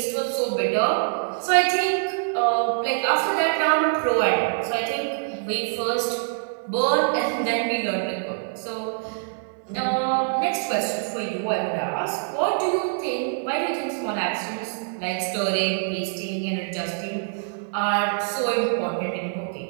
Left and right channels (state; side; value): silent; left; digital silence